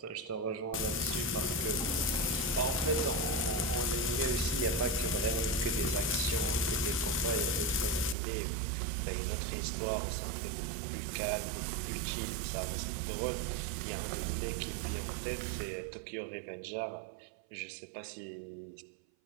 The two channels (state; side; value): drops out; left; at 8.2 s